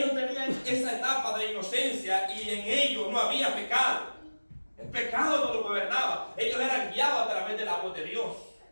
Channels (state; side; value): inverted; both; correlation -1.00